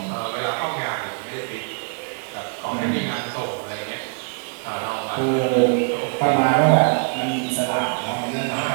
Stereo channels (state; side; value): quieter; left; 39.7 dB